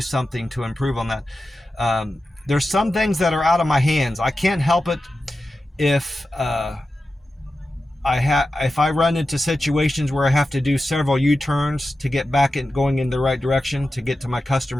something to improve on that. There's some things that are out of my hands. I can't help it if I run into situations where I have to do several U-turns to get back and going in the right direction to get to my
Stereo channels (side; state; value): both; normal; correlation 0.92